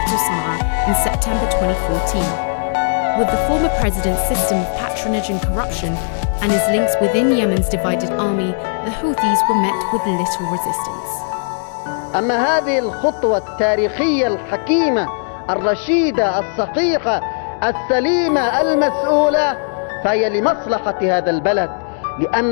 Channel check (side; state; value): right; silent; digital silence